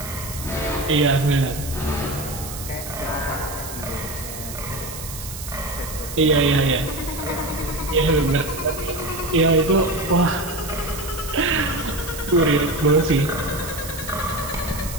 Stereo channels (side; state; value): right; noise; hiss, 10 dB below the sound